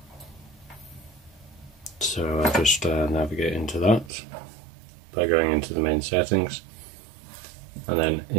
So I just navigate into that by going into the main settings and then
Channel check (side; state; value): left; drops out; at 4.1 s